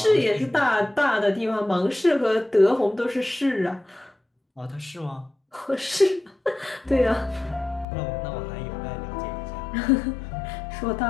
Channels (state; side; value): drops out; right; at 7.9 s